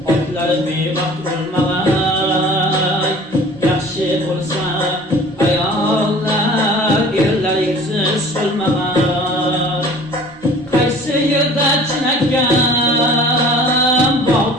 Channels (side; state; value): both; normal; correlation 0.46